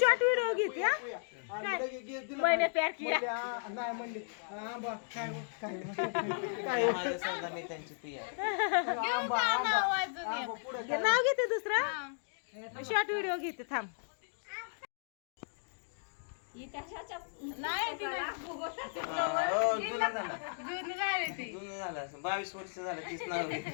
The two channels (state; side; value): silent; right; digital silence